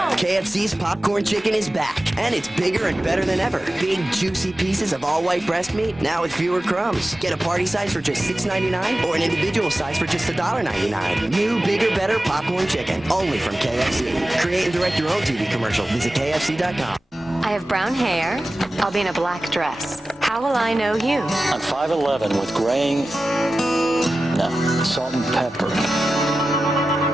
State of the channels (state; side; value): normal; both; correlation 0.95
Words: KFC's popcorn chicken is back, and it's bigger and better than ever. Big, juicy pieces of all-white breast meat, now with fewer crumbs. Get a party size for just $6.99 or an individual size for just $1.99. New, bigger, better popcorn chicken, only from KFC. Create and direct your own TV commercial. Visit KFC.com. I have brown hair. I'll be in a black dress. How will I know you? I'm 5'11" with graying, salt and pepper.